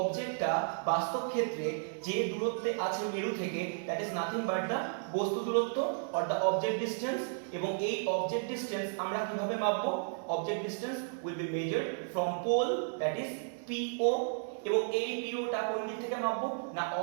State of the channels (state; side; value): silent; left; digital silence